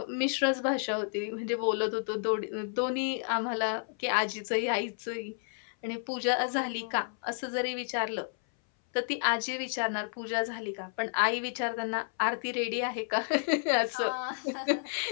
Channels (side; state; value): right; silent; 57 dB below the other